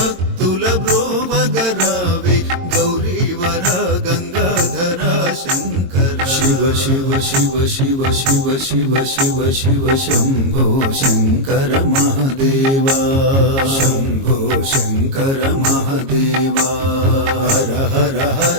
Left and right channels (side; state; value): left; late; 22 ms